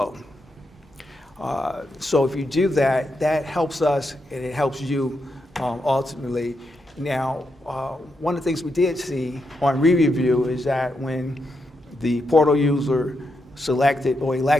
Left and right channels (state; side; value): normal; both; correlation 0.83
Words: So if you do that, that helps us and it helps you ultimately. Now, one of the things we did see on re-review is that when the portal user selected or